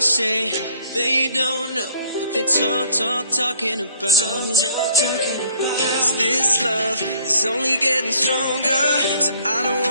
they don't know what they talking about. 'Cause this love is only getting stronger, so I don't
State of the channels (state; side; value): inverted; both; correlation -0.60